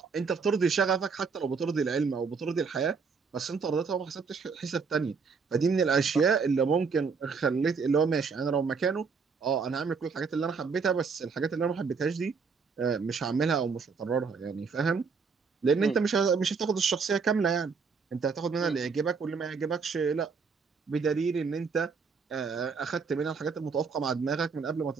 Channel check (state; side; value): quieter; left; 5.3 dB